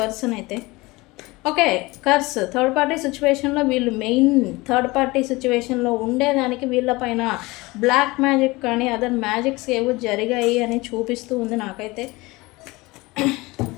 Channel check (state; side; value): quieter; right; 22.3 dB